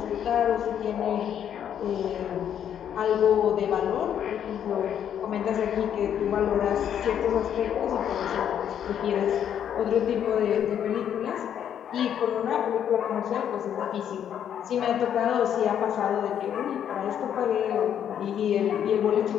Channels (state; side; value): quieter; right; 9.3 dB